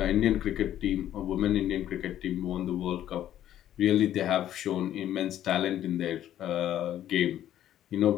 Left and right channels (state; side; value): quieter; right; 11.8 dB